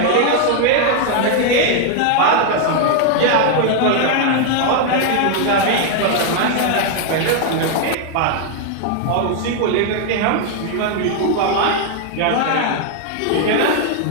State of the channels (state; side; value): different; both; correlation 0.00